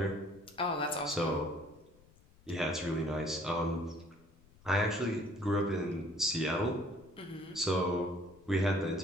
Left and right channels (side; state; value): left; noise; rumble, 27 dB below the sound